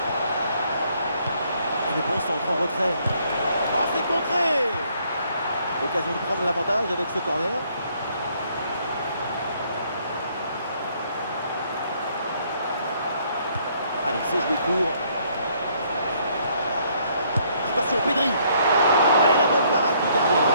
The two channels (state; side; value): inverted; both; correlation -0.67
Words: Le bon centre en retrait. Oh, c'est contré. L'occasion de prendre l'avantage avec ce corner. Allez, c'est joué court. Attention, Pedri. Allez, la bonne parade du gardien.